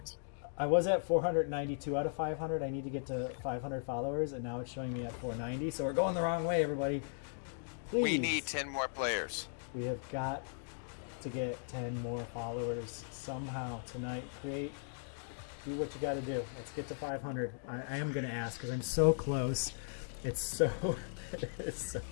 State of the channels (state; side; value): silent; right; digital silence